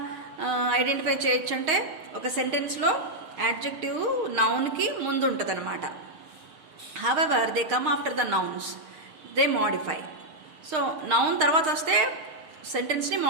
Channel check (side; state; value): left; late; 6.4 ms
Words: identify చేయొచ్చు అంటే, ఒక సెంటెన్స్లో adjective నౌన్కి ముందు ఉంటుంది అనమాట. However they come after the nouns, they modify. So noun తర్వాత వస్తే సెంటెన్స్ని